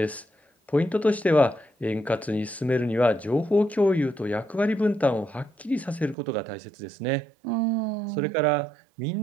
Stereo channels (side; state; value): left; drops out; at 6.2 s